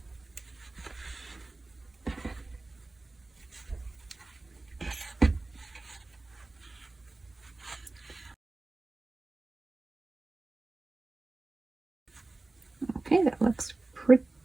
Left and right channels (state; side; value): quieter; left; 3.2 dB